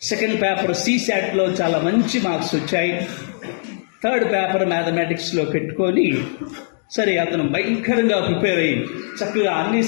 సెకండ్ పేపర్ సిశాట్ లో చాలా మంచి మార్క్స్ వచ్చాయి. థర్డ్ పేపర్ మ్యాథమెటిక్స్ లో పెట్టుకొని సరే అతను భయంకరంగా ప్రిపేర్ అయ్యి చక్కగా అన్ని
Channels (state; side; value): silent; right; digital silence